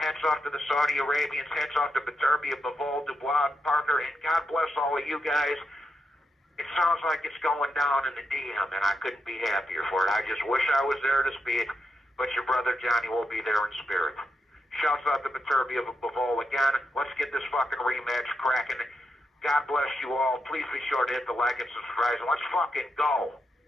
off to the Saudi Arabians. Hats off to Beterbiev, Bivol, Dubois, Parker, and God bless all of you guys. It sounds like it's going down in the DM, and I couldn't be happier for it. I just wish I was there to see it, but your brother Johnny will be there in spirit. Shouts out to Beterbiev and Bivol again. Let's get this fucking rematch cracking. God bless you all. Please be sure to hit the like and subscribe, and let's fucking go.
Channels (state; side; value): normal; both; correlation 0.84